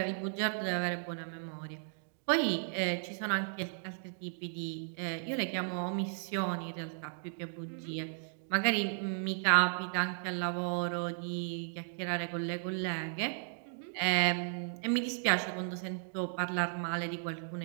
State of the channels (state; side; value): silent; left; digital silence